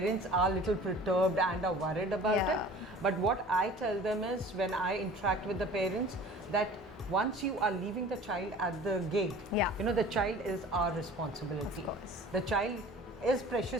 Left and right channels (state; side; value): normal; both; correlation 0.44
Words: are a little perturbed and are worried about it. But what I tell them is, when I interact with the parents, that once you are leaving the child at the gate, the child is our responsibility. The child is